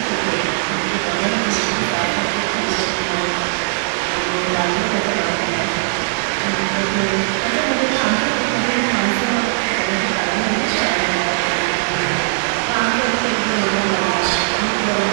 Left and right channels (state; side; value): silent; left; 63 dB below the other